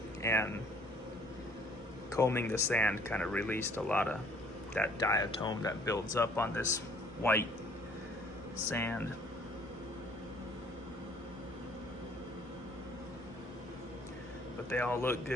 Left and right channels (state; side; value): normal; both; correlation 0.58